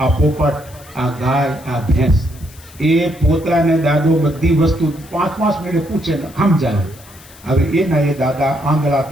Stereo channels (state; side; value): noise; left; hiss, 23 dB below the sound